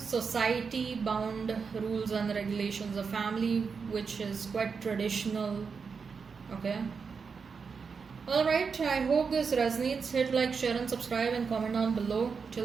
bound rules and regulations, a family which is quite traditional. Okay. Alright, I hope this resonates. Hit like, share and subscribe and comment down below. Till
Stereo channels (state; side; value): quieter; left; 5.5 dB